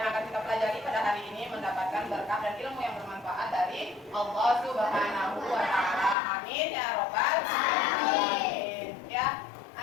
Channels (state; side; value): drops out; right; at 6.2 s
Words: akan kita pelajari pada hari ini mendapatkan berkah dan ilmu yang bermanfaat dari Allah Subhanahu wa Ta'ala. Amin ya robbal alamin. Ya,